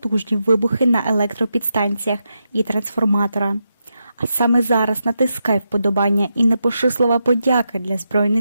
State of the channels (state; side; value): inverted; both; correlation -0.86